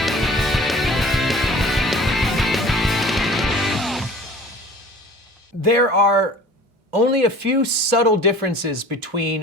There are only a few subtle differences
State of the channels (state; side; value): normal; both; correlation 0.45